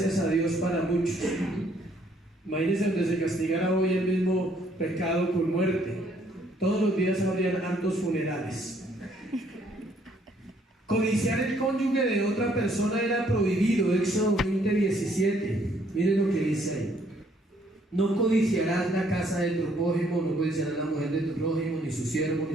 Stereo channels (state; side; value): normal; both; correlation 0.66